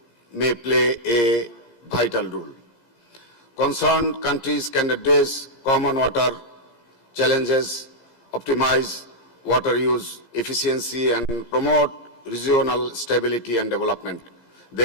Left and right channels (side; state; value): right; late; 17 ms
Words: may play a vital role. Concerned countries can address common water challenges, optimize water use efficiency, and promote regional stability and development.